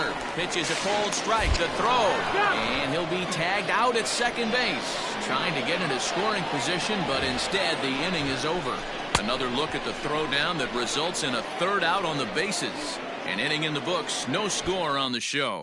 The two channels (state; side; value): identical; both; correlation 1.00